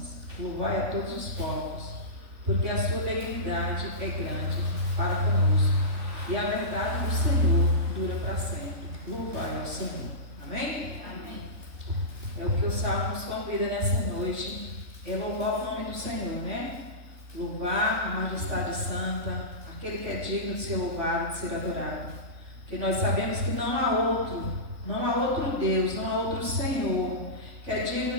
louvai a todos os povos, porque a sua benignidade é grande para conosco, e a verdade do Senhor dura para sempre. Louvai ao Senhor. Amém? Amém. É o que o Salmo nos convida nessa noite, é louvar o nome do Senhor, né? Louvar a majestade santa, aquele que é digno de ser louvado, de ser adorado. Porque nós sabemos que não há outro Deus, não há outro Senhor que é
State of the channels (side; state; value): left; late; 3.5 ms